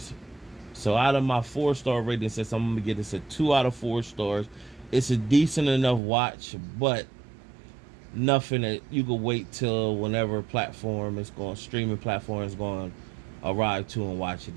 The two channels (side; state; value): left; drops out; at 6.0 s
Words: So out of my 4-star rating system, I'm going to give this a 2 out of 4 stars. It's a decent enough watch, but nothing that you could wait till whenever streaming platform is going to arrive to and watch it.